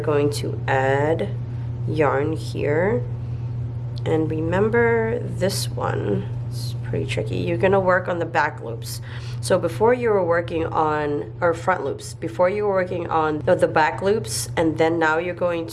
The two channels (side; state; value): both; identical; correlation 1.00